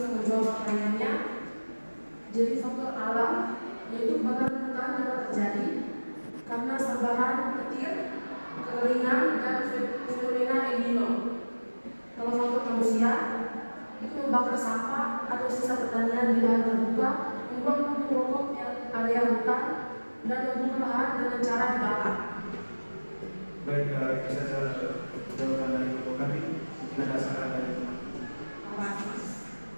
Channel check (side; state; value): both; inverted; correlation -1.00